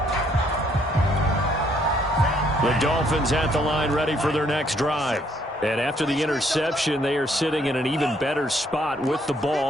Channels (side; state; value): both; normal; correlation 0.68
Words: The Dolphins at the line ready for their next drive. And after the interception, they are sitting in an even better spot with the